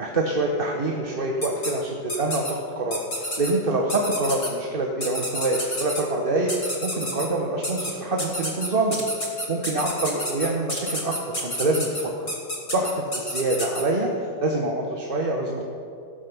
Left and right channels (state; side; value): late; right; 5.5 ms